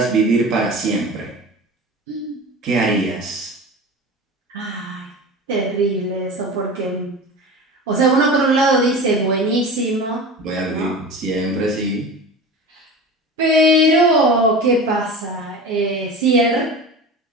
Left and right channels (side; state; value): both; normal; correlation 0.32